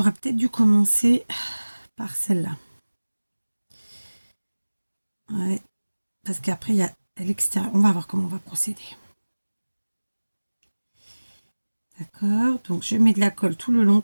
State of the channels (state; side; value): inverted; both; correlation -1.00